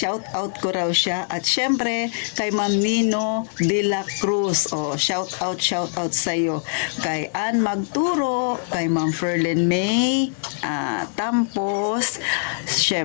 out ko raw siya. At syempre, kay Ma'am Nino de la Cruz, shout out sa'yo. Kay Ann Magturo, kay Ma'am Ferlin May, Tampos,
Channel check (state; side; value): silent; right; digital silence